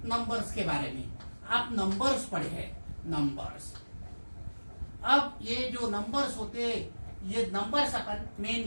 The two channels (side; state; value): both; inverted; correlation -1.00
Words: नंबर्स के बारे में। आप नंबर्स पढ़े हैं, नंबर्स। अब ये जो नंबर्स होते हैं, ये नंबर्स अपन